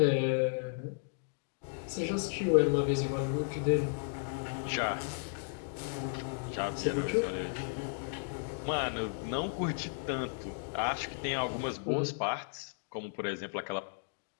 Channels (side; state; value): right; silent; digital silence